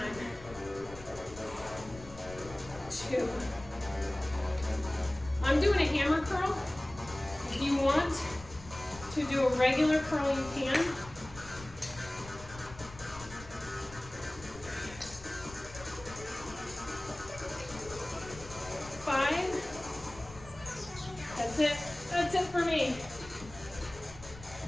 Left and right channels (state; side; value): noise; left; rumble, 16 dB below the sound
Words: 2. I'm doing a hammer curl. If you want to do a regular curl, you can.